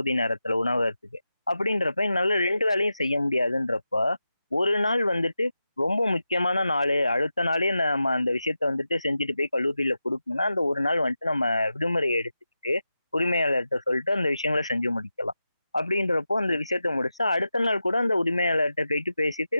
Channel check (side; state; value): both; inverted; correlation -0.91